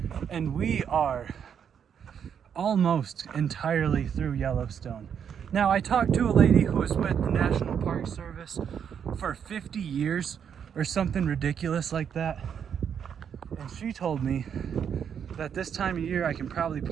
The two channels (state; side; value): quieter; left; 7.9 dB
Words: and we are almost entirely through Yellowstone. Now, I talked to a lady who was with the National Park Service for 50 years or something ridiculous like that, and she told me that this time of year I can probably